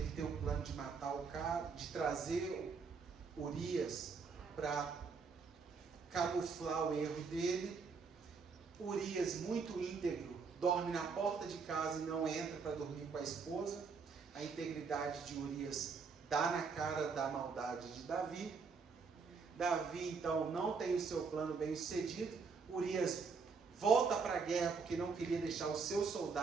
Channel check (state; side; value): quieter; left; 5.1 dB